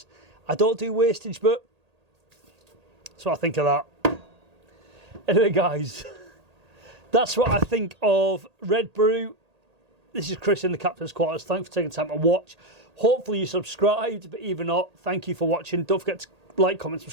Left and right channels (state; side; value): late; left; 1.8 ms